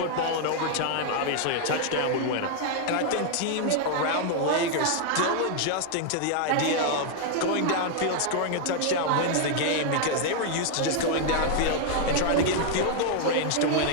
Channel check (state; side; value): different; both; correlation 0.00